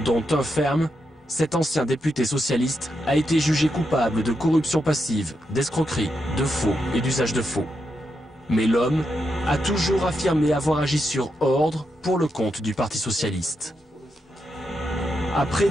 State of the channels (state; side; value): normal; both; correlation 0.84